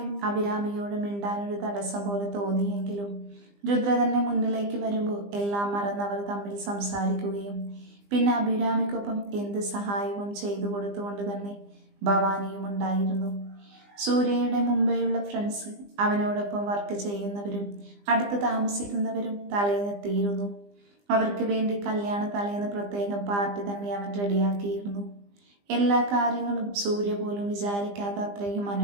അഭിരാമിയോട് മിണ്ടാനൊരു തടസ്സം പോലെ തോന്നിയെങ്കിലും രുദ്ര തന്നെ മുന്നിലേക്ക് വരുമ്പോൾ എല്ലാം മറന്നവർ തമ്മിൽ സംസാരിക്കുകയും പിന്നെ അഭിരാമിക്കൊപ്പം എന്ത് സഹായവും ചെയ്തു കൊടുത്തുകൊണ്ട് തന്നെ ഭവാനിയും ഉണ്ടായിരുന്നു. സൂര്യയുടെ മുമ്പെയുള്ള ഫ്രണ്ട്സ്, അവനോടൊപ്പം വർക്ക് ചെയ്യുന്നവരും അടുത്ത് താമസിക്കുന്നവരും തലേന്നെത്തിയിരുന്നു. അവർക്ക് വേണ്ടി കല്യാണ തലേന്ന് പ്രത്യേകം പാർട്ടി തന്നെ അവൻ റെഡിയാക്കിയിരുന്നു. എല്ലാ കാര്യങ്ങളും സൂര്യ പോലും വിചാരിക്കാതെ അത്രയും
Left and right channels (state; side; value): late; left; 20 ms